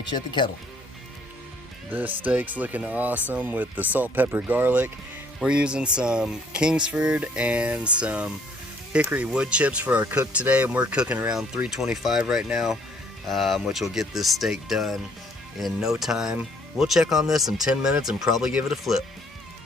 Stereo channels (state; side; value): normal; both; correlation 0.62